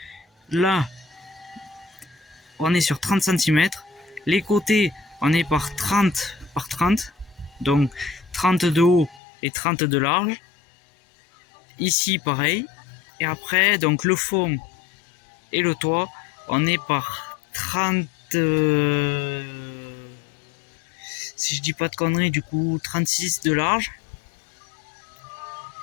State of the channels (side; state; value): right; drops out; at 9.2 s